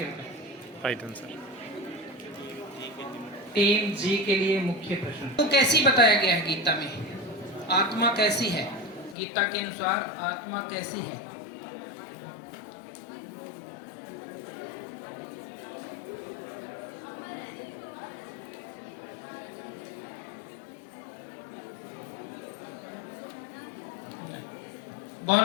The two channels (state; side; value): drops out; right; at 9.2 s